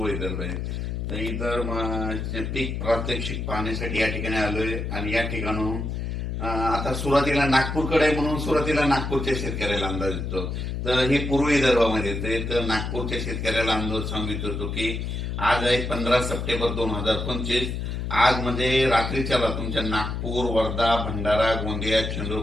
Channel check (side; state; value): left; noise; hum, 3 dB below the sound